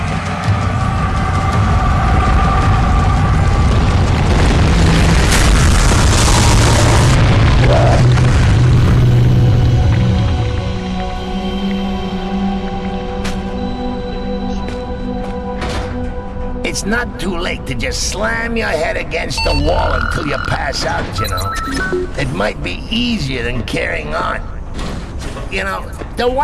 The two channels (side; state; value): both; identical; correlation 1.00